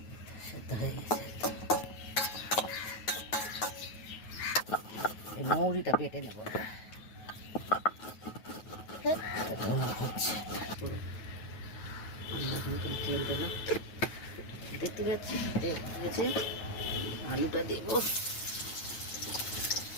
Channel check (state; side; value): late; right; 9.4 ms